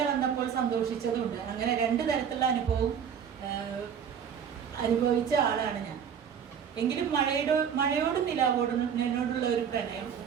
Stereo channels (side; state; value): left; quieter; 7.8 dB